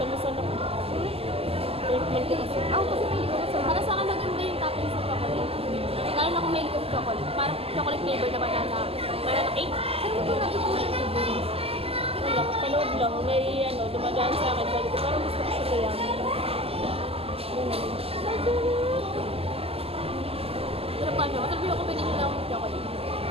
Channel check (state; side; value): late; left; 0.29 ms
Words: ako. Ako kasi hindi ko masarap. Para sa akin maganda yung topping sa chocolate. Lalo na kung may likod chocolate. Parang chocolate flavor na banana cake. Saan mo ito natutunan ko ba? Wala, panood lang. May ano, dumadaan sa akin. Sabi ko, parang gusto ko siya kaya. Pero pa siya, masarap yung combination ng chocolate.